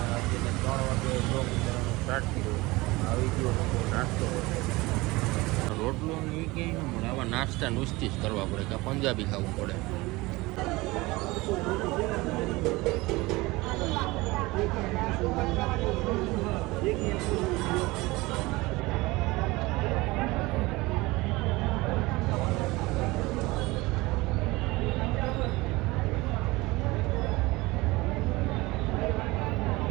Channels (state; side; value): quieter; left; 21.6 dB